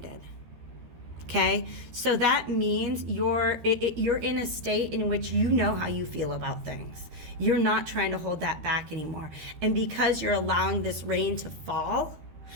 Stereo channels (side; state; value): left; late; 13 ms